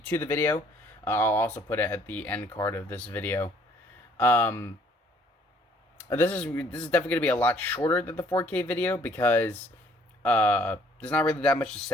the video. I'll also put it at the end card of this video. This is definitely gonna be a lot shorter than the 4K video because there's not really that much to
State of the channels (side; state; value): both; normal; correlation 0.61